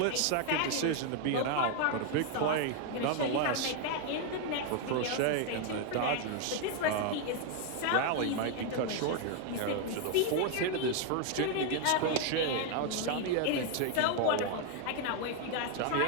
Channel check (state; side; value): different; both; correlation 0.01